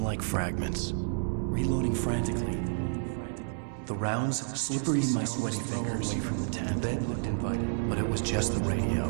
fragments. Reloading frantically. The rounds slippery stones throw away from the tent. The bed looked inviting, but it was just the radio.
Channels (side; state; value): left; silent; 58 dB below the other